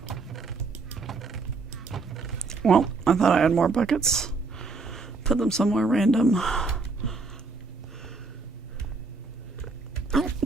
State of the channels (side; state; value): left; quieter; 4.0 dB